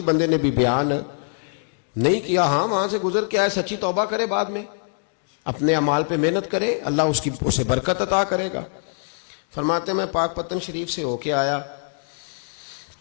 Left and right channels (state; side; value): silent; right; digital silence